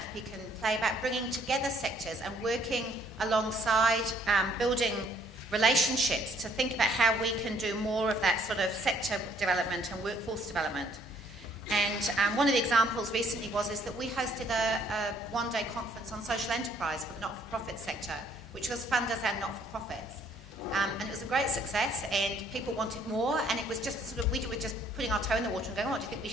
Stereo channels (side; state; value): both; normal; correlation 0.64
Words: can play about bringing together sectors and working alongside building relationships to think about how we can do more of that sort of sector development and workforce development. And one of the examples recently is that we hosted a one-day conference on social enterprise for the not-for-profit sector, which was funders and not-for-profits. And it was a great success, and people wanted more, and it was just a sort of, we were just putting our toe in the water and going, oh, do you think we